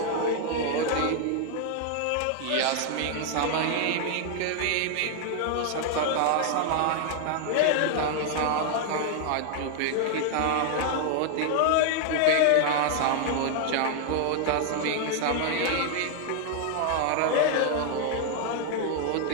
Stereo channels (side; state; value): both; different; correlation 0.00